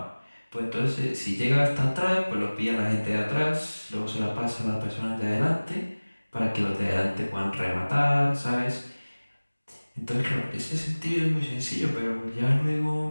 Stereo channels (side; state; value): both; inverted; correlation -1.00